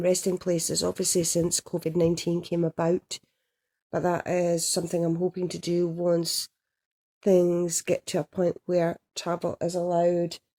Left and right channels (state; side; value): identical; both; correlation 1.00